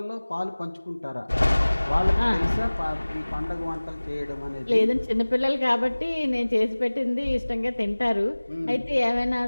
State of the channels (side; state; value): both; inverted; correlation -1.00